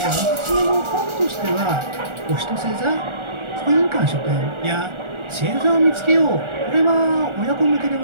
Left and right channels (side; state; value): left; late; 1.4 ms